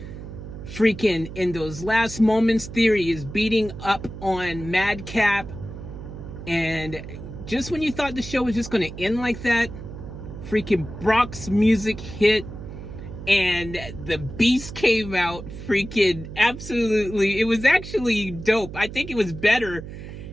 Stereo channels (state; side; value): noise; right; hum, 11 dB below the sound